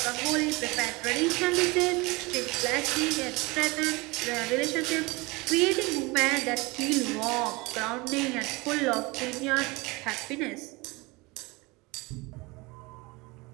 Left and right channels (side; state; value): left; quieter; 24.5 dB